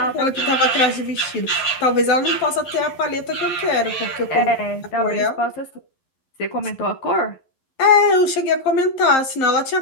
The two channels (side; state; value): right; late; 11 ms